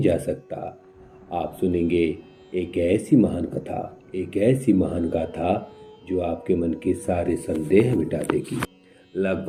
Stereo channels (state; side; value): identical; both; correlation 1.00